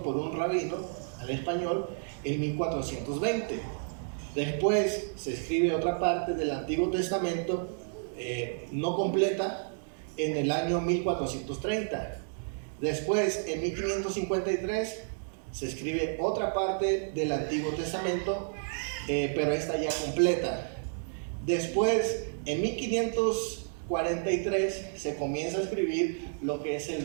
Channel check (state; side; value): silent; left; digital silence